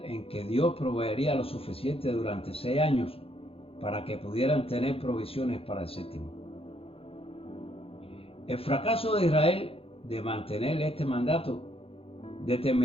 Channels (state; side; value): late; right; 0.27 ms